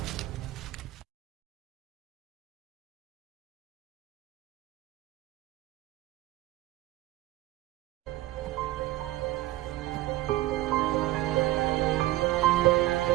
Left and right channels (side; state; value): left; quieter; 17.0 dB